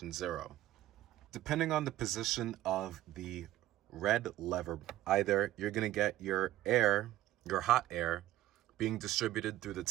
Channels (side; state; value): left; quieter; 14.7 dB